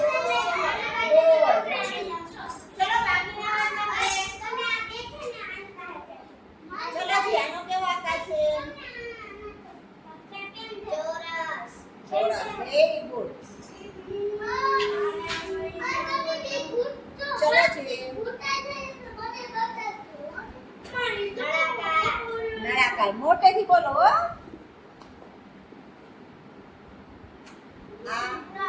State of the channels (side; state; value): both; identical; correlation 1.00